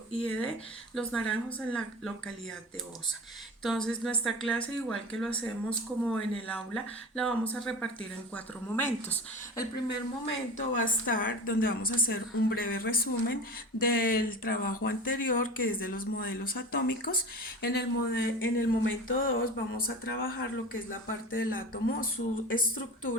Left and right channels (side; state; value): both; normal; correlation 0.32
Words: IED Los Naranjos en la localidad de Osa. Entonces nuestra clase, igual que lo hacemos como en el aula, la vamos a repartir en 4 momentos. El primer momento va a estar donde vamos a hacer un breve resumen del trabajo anterior, que es de los modelos atómicos. En el momento 2 vamos a trabajar lo que es la parte del átomo, su